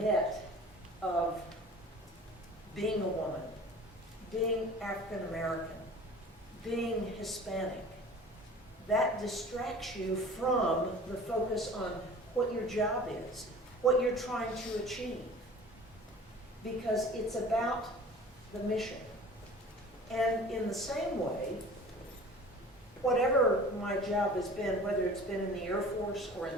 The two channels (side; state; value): both; normal; correlation 0.43